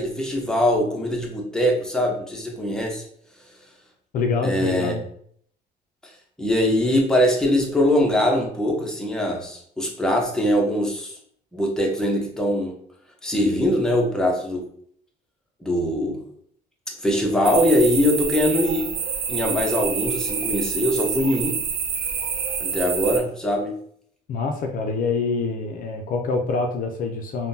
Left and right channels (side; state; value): both; normal; correlation 0.56